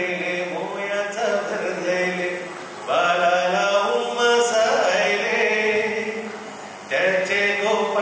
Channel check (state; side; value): identical; both; correlation 1.00